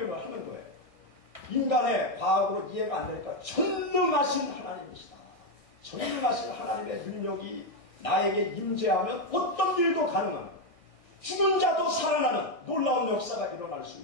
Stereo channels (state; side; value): late; right; 1.6 ms